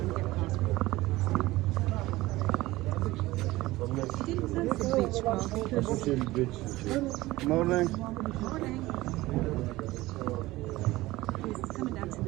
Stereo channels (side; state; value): left; quieter; 18.5 dB